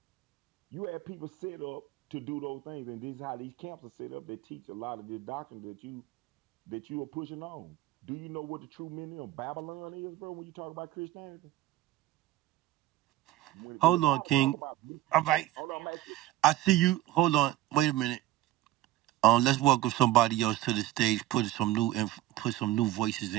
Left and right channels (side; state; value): left; quieter; 15.1 dB